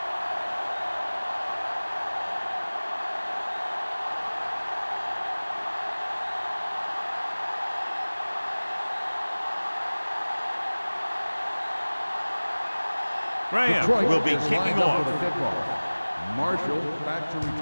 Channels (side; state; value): both; inverted; correlation -1.00